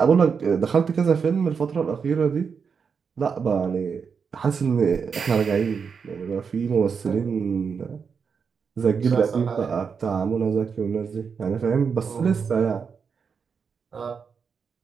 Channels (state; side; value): quieter; left; 6.0 dB